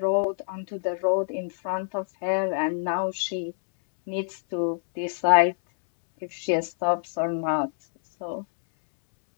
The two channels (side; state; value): right; silent; 61 dB below the other